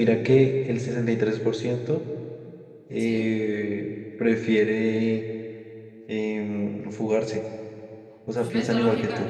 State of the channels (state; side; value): identical; both; correlation 1.00